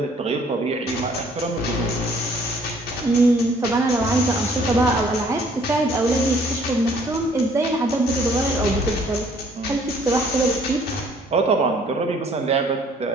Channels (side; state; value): both; normal; correlation 0.60